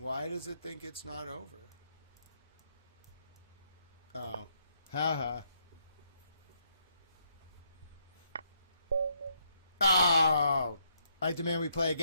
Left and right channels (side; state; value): both; inverted; correlation -0.74